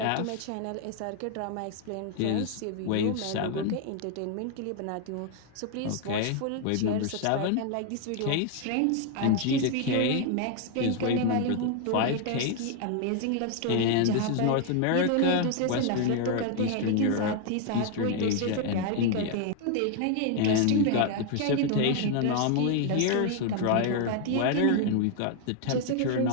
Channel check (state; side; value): different; both; correlation 0.00